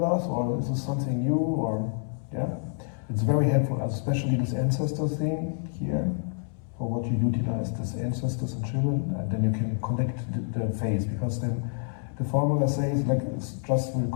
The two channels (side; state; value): right; silent; 59 dB below the other